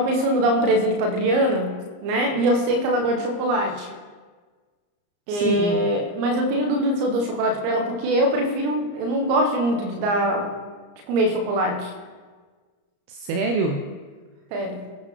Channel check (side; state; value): left; late; 34 ms